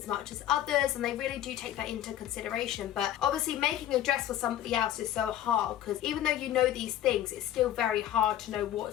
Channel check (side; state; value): right; quieter; 12.0 dB